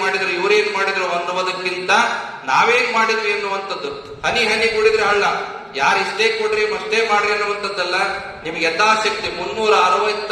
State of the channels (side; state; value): both; identical; correlation 1.00